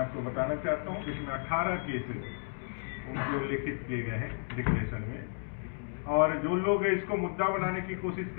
बताना चाहता हूं, इसमें 18 केसेस उनके उल्लेखित किए गए हैं डिक्लेरेशन में। और जो लोग इसको मुद्दा बनाने की कोशिश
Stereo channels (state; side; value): silent; right; digital silence